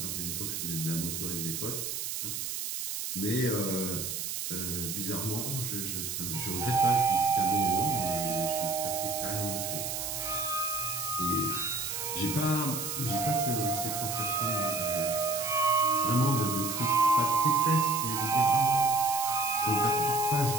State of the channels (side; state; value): right; noise; hiss, 4 dB below the sound